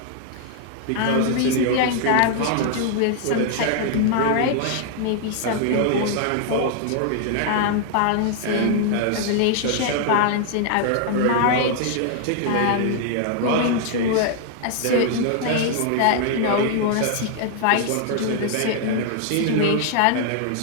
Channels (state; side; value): different; both; correlation 0.00